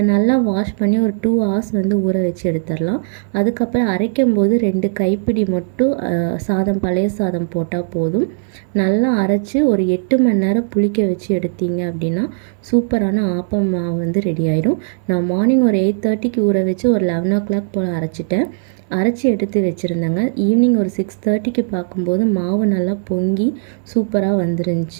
நல்லா வாஷ் பண்ணி ஒரு 2 ஹவர்ஸ் ஊற வச்சு எடுத்துடலாம். அதுக்கப்புறம் அரைக்கும் போது 2 கைப்பிடி மட்டும் சாதம், பழைய சாதம் போட்டால் போதும். நல்லா அரைச்சி ஒரு 8 மணி நேரம் புளிக்க வச்சு எடுத்தீங்க அப்படின்னா சூப்பரான ஆப்பம் மாவு ரெடி ஆகிடும். நான் மார்னிங் ஒரு 8:30க்கு ஊற வச்சு ஒரு 11 o'clock போல் அரைச்சிட்டேன். அரைச்சி எடுத்து வச்சுருந்தேங்க. ஈவினிங் ஒரு 6:30க்கு பார்க்கும்போது மாவு நல்லா பொங்கி சூப்பராக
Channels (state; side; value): silent; left; 62 dB below the other